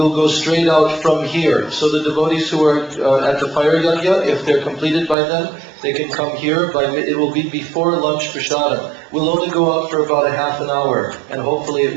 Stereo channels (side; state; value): left; drops out; at 5.2 s